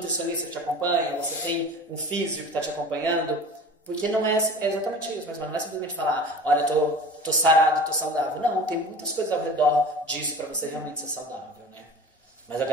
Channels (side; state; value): both; normal; correlation 0.38